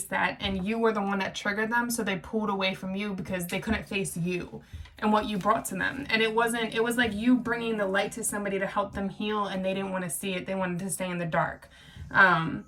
that, and you were the one that triggered them, so they pulled away from you because they couldn't face you and what you brought to them. And it was like you bringing the light to somebody to help them heal, and they didn't want to see it. They wanted to stay in the dark.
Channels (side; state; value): both; identical; correlation 1.00